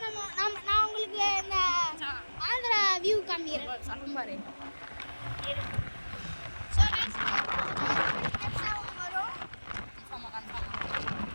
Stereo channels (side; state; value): both; inverted; correlation -1.00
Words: நான் உங்களுக்கு இந்த ஆந்திரா வியூ காமிக்கிறேன். சலம்பாரு